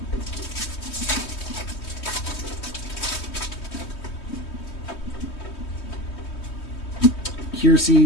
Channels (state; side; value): late; right; 3.2 ms